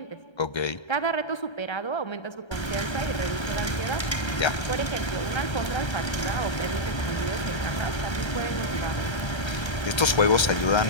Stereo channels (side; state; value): right; late; 1.3 ms